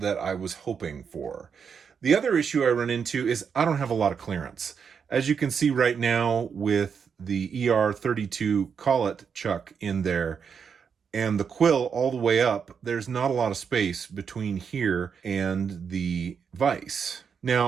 I was hoping for. The other issue I run into is I don't have a lot of clearance. As you can see right now with the ER32 collet chuck in there and the quill all the way up, there's not a lot of space between here and the vise.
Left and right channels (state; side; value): quieter; left; 6.6 dB